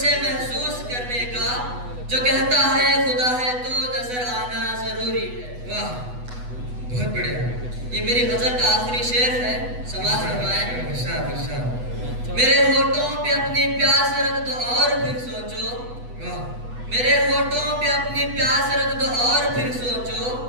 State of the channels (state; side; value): late; left; 8.1 ms